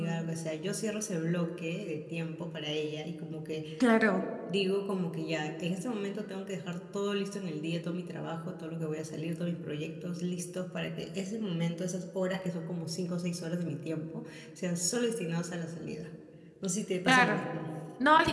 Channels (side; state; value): both; identical; correlation 1.00